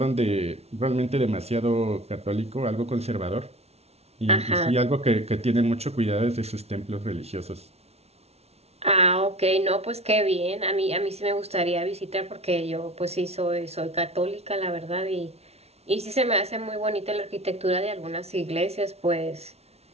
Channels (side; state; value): left; late; 0.31 ms